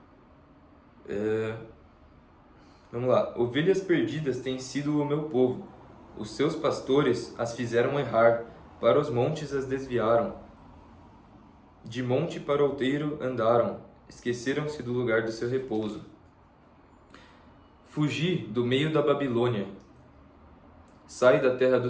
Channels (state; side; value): identical; both; correlation 1.00